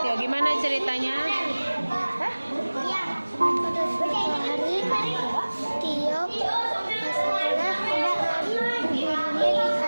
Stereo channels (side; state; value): both; inverted; correlation -1.00